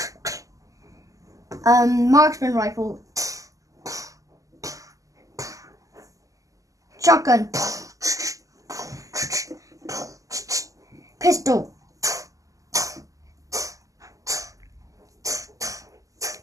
Marksman rifle. Shotgun. Pistol.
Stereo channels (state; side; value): late; left; 0.16 ms